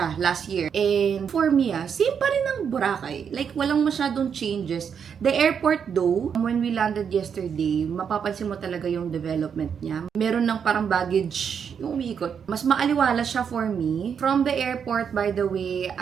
last year. And for me, same pa rin ang Boracay. Like, walang masyadong changes. The airport though, when we landed yesterday, mapapansin mo talaga yung development niya. Meron ng parang baggage yung umiikot. Mas maaliwala siya for me. From the airport, by the way,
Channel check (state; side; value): quieter; left; 7.2 dB